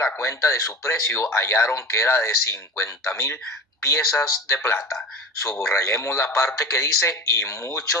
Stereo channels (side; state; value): both; normal; correlation 0.34